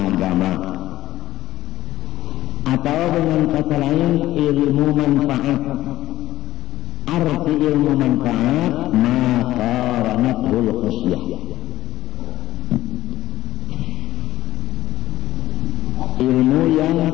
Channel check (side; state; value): right; quieter; 15.3 dB